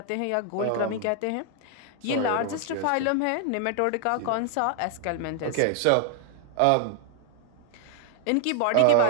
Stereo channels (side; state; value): both; different; correlation 0.00